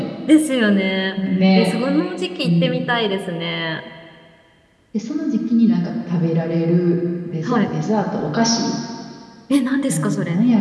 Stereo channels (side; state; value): both; identical; correlation 1.00